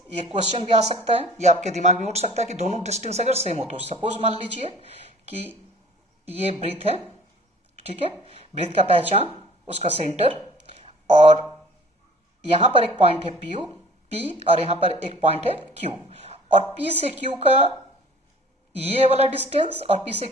ये क्वेश्चन भी आ सकता है, ये आपके दिमाग में उठ सकता है कि दोनों डिस्टेंस अगर सेम हो तो सपोज मान लीजिए कि ये ब्रीथ है, ठीक है, ब्रीथ का पहचान उसका सेंटर, और यहां पर एक पॉइंट है P और यहां पर एक पॉइंट है Q, और P से Q का ये वाला डिस्टेंस और P से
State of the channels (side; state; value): both; normal; correlation 0.51